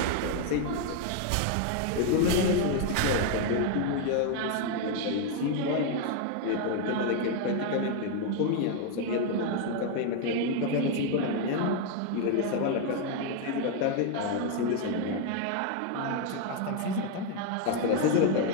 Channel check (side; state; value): both; different; correlation 0.01